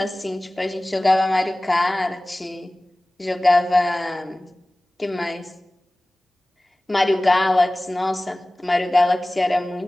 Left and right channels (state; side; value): normal; both; correlation 0.98